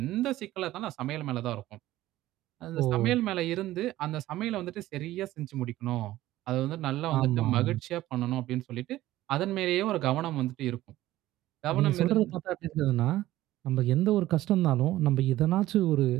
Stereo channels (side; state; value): left; quieter; 15.4 dB